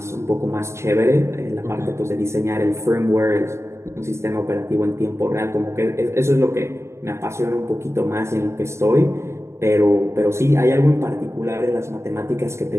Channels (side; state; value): left; late; 0.13 ms